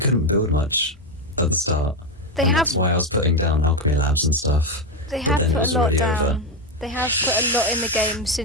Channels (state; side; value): normal; both; correlation 0.08